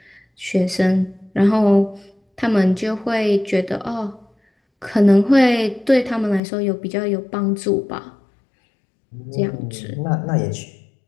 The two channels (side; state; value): right; drops out; at 6.4 s